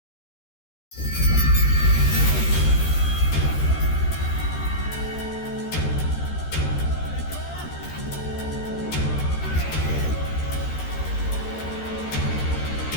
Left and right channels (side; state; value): right; late; 13 ms